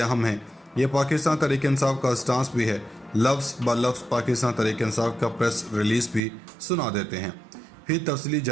हैं। ये पाकिस्तान तहरीक इंसाफ का स्टांस भी है। लफ्ज़ ब लफ्ज़ पाकिस्तान तहरीक इंसाफ का प्रेस रिलीज़ भी सुना देते हैं। फिर तफसीली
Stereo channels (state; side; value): drops out; left; at 6.2 s